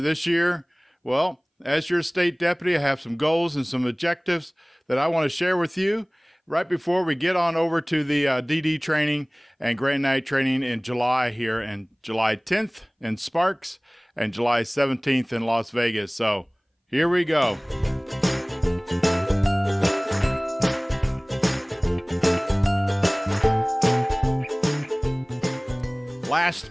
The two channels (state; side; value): identical; both; correlation 1.00